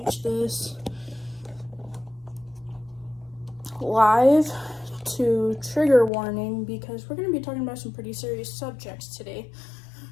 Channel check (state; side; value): drops out; right; at 6.1 s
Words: this live to trigger warning because we're gonna be talking about some pretty serious subjects today.